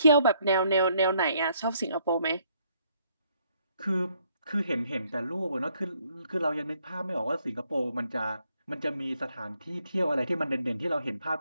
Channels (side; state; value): both; inverted; correlation -0.69